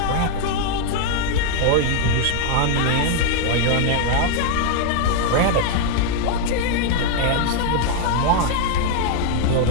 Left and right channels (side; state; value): both; different; correlation 0.00